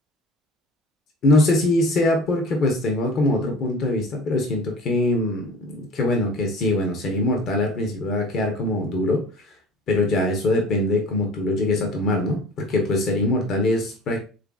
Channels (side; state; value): both; normal; correlation 0.42